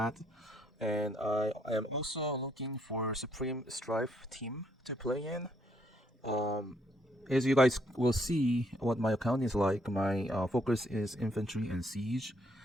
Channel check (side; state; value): both; normal; correlation 0.70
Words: And I am also looking for Supreme Strife team to play in. As you guys will see, what my account is like, my focus is infantry and siege.